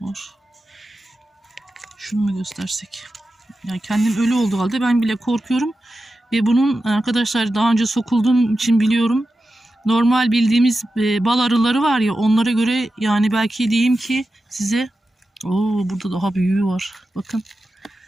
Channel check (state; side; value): normal; both; correlation 0.92